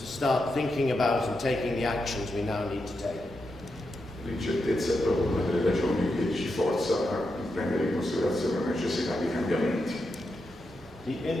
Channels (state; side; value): normal; both; correlation 0.86